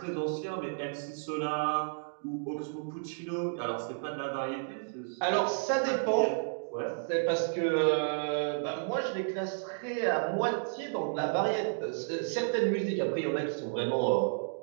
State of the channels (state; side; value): silent; left; digital silence